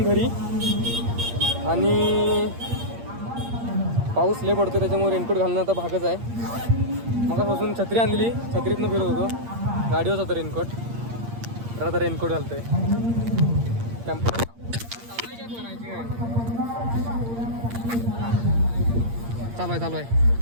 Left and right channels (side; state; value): left; late; 8.6 ms